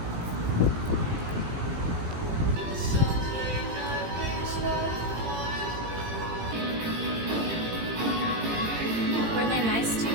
Were they nice to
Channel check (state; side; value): late; left; 18 ms